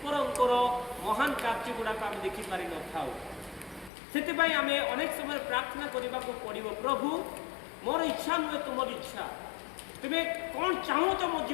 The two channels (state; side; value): drops out; right; at 3.9 s